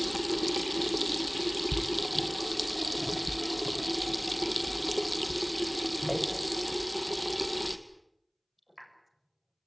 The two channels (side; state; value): both; identical; correlation 1.00